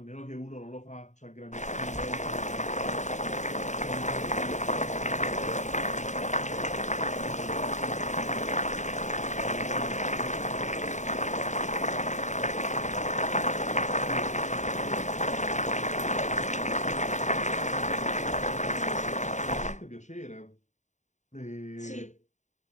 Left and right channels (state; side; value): late; right; 0.34 ms